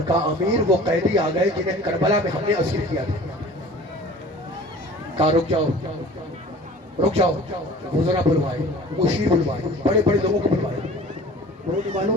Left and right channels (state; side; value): normal; both; correlation 0.44